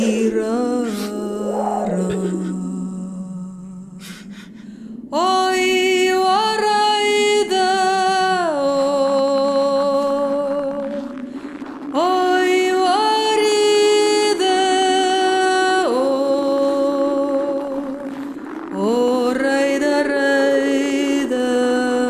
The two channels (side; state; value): both; identical; correlation 1.00